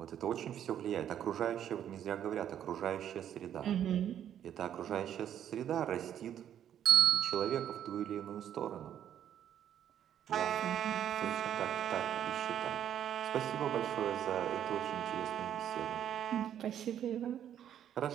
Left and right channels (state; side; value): quieter; left; 10.1 dB